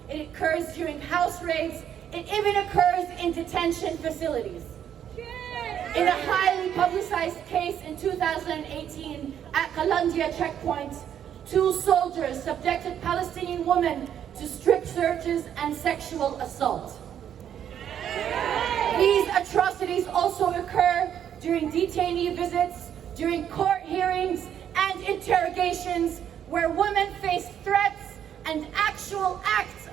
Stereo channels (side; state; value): left; quieter; 9.5 dB